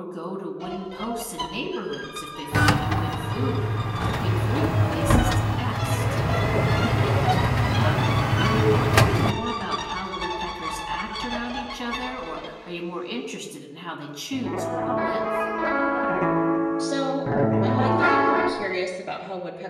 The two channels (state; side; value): identical; both; correlation 1.00